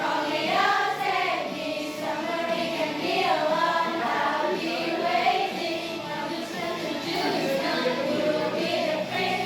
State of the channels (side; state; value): both; identical; correlation 1.00